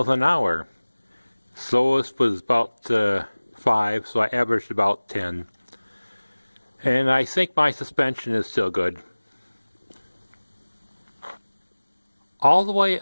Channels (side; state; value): both; inverted; correlation -1.00